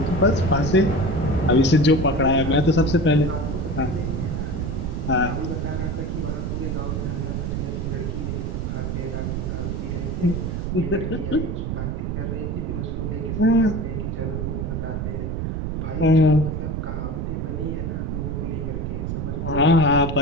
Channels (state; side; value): noise; right; rumble, 2 dB below the sound